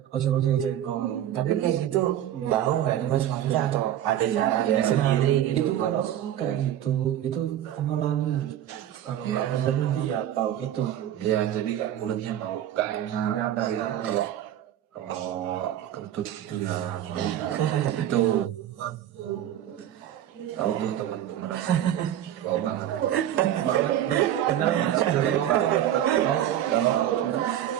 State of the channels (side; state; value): left; quieter; 11.4 dB